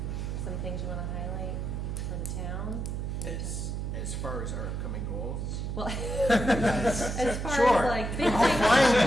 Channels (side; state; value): right; noise; hum, 3 dB below the sound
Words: some things you want to highlight for the town? As far as our upcoming goals, Well, as far Sure. as like